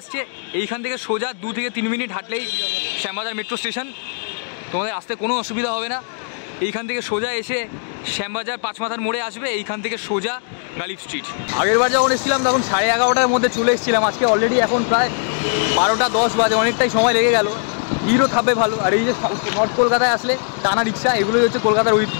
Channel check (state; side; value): silent; right; digital silence